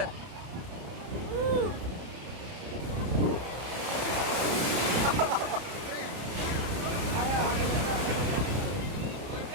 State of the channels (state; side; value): late; left; 30 ms